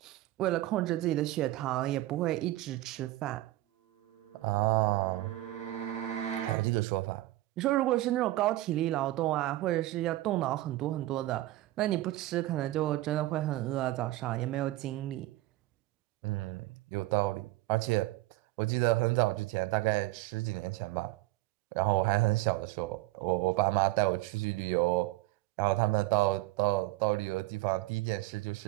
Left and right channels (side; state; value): left; quieter; 17.4 dB